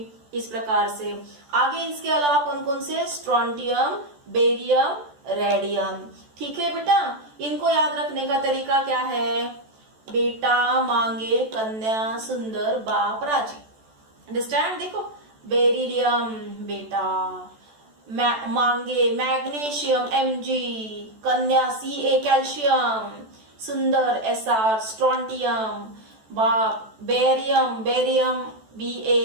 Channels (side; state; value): left; late; 14 ms